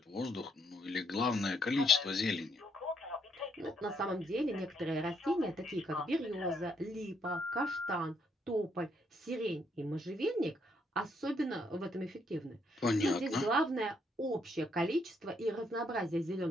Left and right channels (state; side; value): normal; both; correlation 0.72